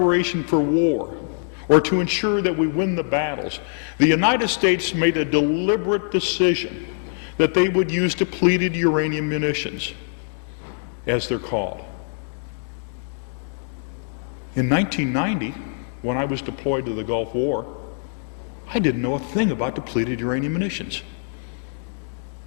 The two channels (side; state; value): right; silent; digital silence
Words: for war, or to ensure that we win the battles, the United States made a deliberate decision that they would use depleted uranium munitions, as they're called. In 1990, when I was deployed to the Gulf War, I didn't know a thing about depleted uranium munitions.